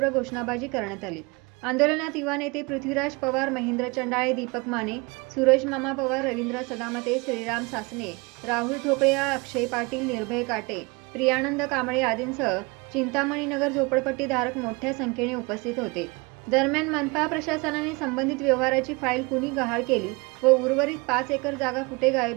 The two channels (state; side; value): quieter; left; 27.2 dB